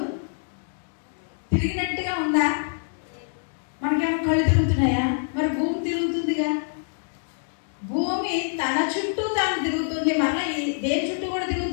తిరిగినట్టుగా ఉందా? మనకేమో కళ్ళు తిరుగుతున్నాయా? మరి భూమి తిరుగుతుందిగా. భూమి తన చుట్టూ తాను తిరుగుతుంది. మన దేని చుట్టూ కూడా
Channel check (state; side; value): silent; right; digital silence